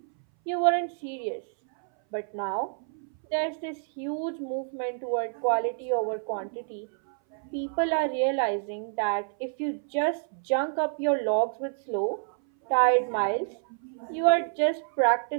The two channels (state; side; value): silent; left; 59 dB below the other